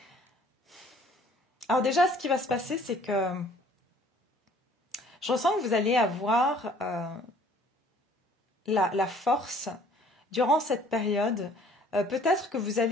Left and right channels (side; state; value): both; normal; correlation 0.56